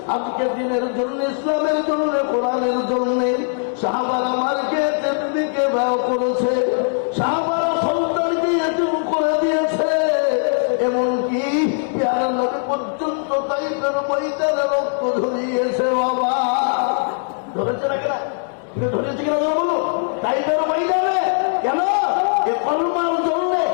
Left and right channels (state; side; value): silent; right; digital silence